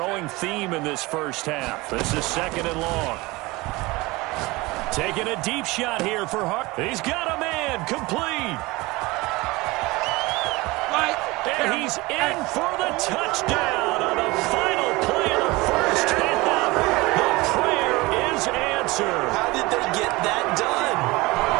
theme in this first half. This is second and long. Taking a deep shot here for Hart. He's got him in. again, complete. And he's in for the touchdown on the final play of the first half. The prayer is answered. How did they get that done?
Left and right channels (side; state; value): left; quieter; 22.2 dB